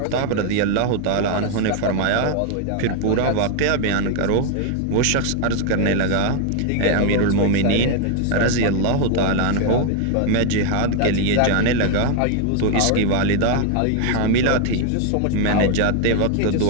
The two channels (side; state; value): both; different; correlation 0.01